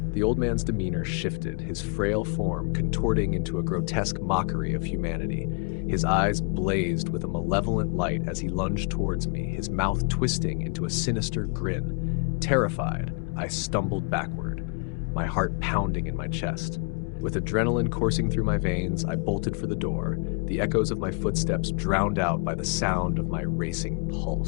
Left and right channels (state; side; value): quieter; right; 37.0 dB